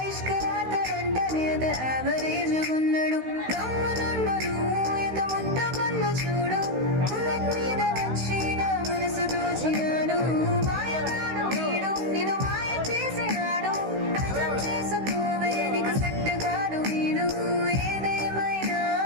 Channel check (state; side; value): late; left; 16 ms